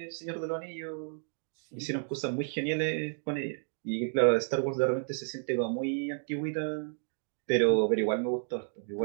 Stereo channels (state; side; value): silent; left; 57 dB below the other